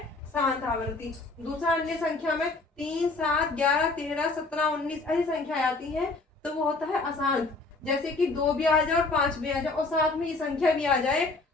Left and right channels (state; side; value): quieter; right; 3.5 dB